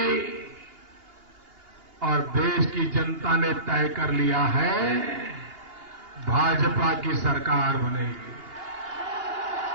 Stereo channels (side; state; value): left; late; 2.8 ms